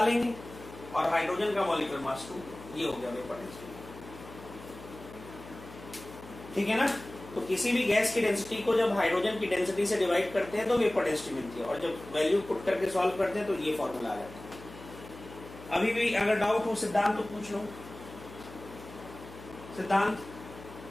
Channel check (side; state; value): left; noise; hum, 16 dB below the sound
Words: और हाइड्रोजन का मॉलिक्यूलर मास 2, ये हो गया वेपर डेंसिटी। ठीक है ना। तो किसी भी गैस की डेंसिटी को जब हाइड्रोजन की डेंसिटी से डिवाइड करते हैं तो वेपर डेंसिटी मिलती है, और जब वैल्यू पुट करके सॉल्व करते हैं तो ये फॉर्मूला आ जाता है। अभी भी अगर डाउट हो सिद्धांत तो पूछ लो। सिद्धांत